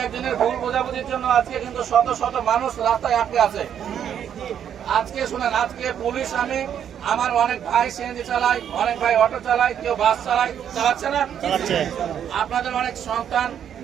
একজনের ভুল বোঝাবুঝির জন্য আজকে কিন্তু শত শত মানুষ রাস্তায় আটকে আছে। আজকে শুনেন, আজকে পুলিশ, আমার অনেক ভাই সিএনজি চালায়, অনেক ভাই অটো চালায়, কেউ বাস চালাচ্ছে না। আপনাদের অনেক সন্তান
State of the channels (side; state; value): left; quieter; 9.1 dB